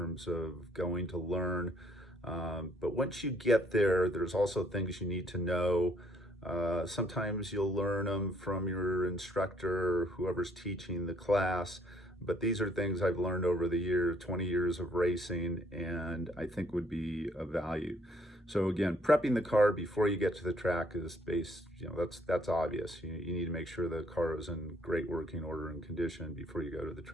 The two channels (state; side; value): normal; both; correlation 0.65